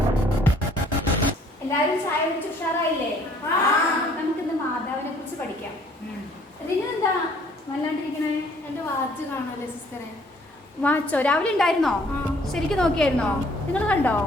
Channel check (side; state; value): both; normal; correlation 0.59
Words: എല്ലാവരും ചായ കുടിച്ച് ഉഷാറായില്ലേ? നമുക്കിന്ന് മാതാവിനെ കുറിച്ച് പഠിക്കാം. ഇതിനെന്താ വല്ലാണ്ടിരിക്കണേ? എന്റെ വാച്ച് കാണാല്ലേ സിസ്റ്ററെ? വാച്ചോ? രാവിലെ ഉണ്ടായിരുന്നോ? ശരിക്കും നോക്കിയായിരുന്നോ? നിങ്ങൾ കണ്ടോ?